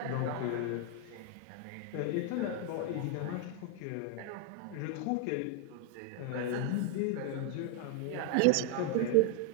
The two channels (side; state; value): both; different; correlation 0.01